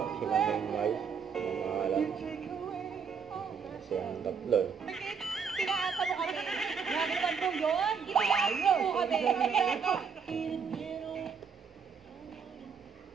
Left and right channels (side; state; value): left; quieter; 6.2 dB